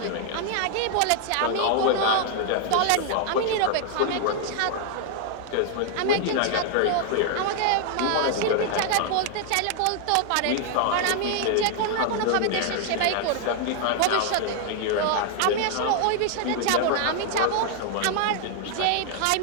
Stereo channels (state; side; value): different; both; correlation 0.00